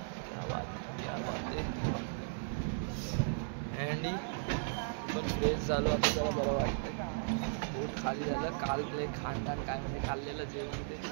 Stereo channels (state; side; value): silent; left; 54 dB below the other